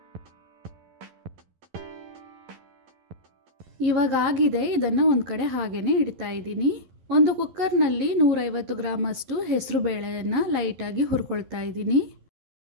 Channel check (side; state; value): left; late; 11 ms